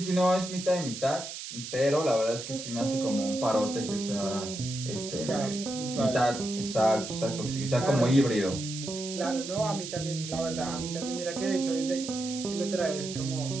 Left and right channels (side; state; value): right; noise; hiss, 9 dB below the sound